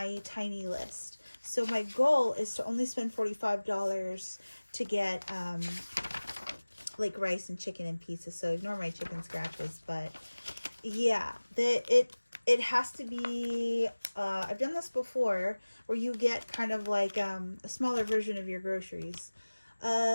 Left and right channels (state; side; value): inverted; both; correlation -1.00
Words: tiny list. So my goal is to only spend $45 to get like rice and chicken and pizza. So ignore my chicken scratches, but yeah, it has to be I've done this before where you get kind of like a smaller version of your groceries.